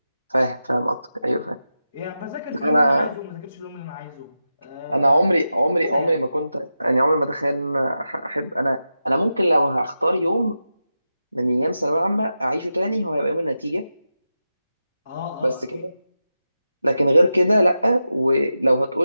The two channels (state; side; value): inverted; both; correlation -0.90